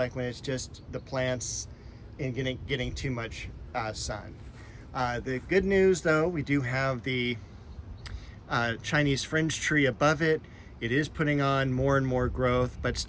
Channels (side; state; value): both; identical; correlation 1.00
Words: when it's just the plants and getting too much sun. The good news, though, we do have the Chinese fringe tree above it. It is putting on more and more growth, but